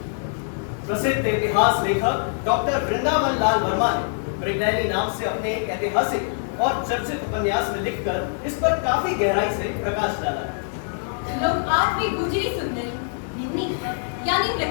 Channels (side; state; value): right; silent; digital silence